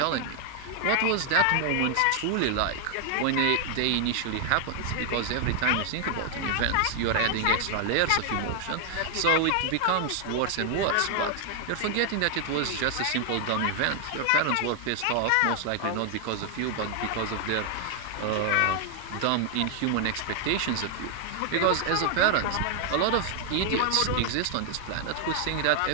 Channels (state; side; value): different; both; correlation 0.00